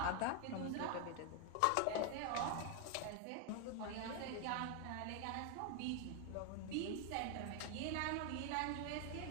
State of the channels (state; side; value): different; both; correlation 0.01